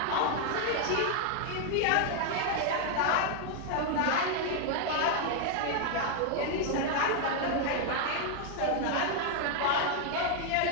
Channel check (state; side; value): different; both; correlation 0.00